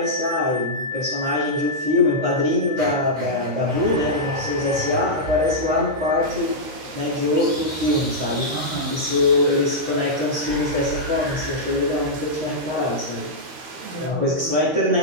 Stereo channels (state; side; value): late; left; 13 ms